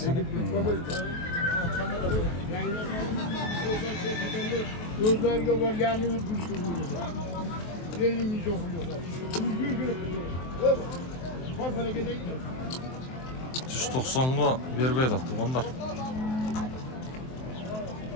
Gözlerge var yani yürgüçtür bu yüzden. 50 milyon kuruyorlar. Bak bana gideyim. 190'ga berbeydi tuğanlar.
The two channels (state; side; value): late; right; 23 ms